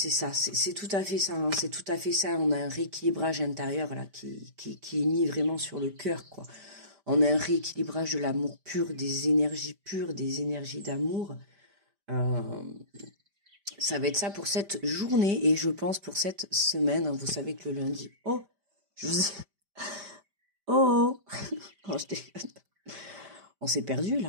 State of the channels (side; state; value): left; late; 5.1 ms